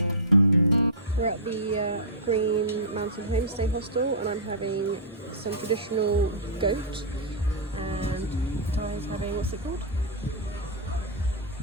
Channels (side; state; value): both; normal; correlation -0.16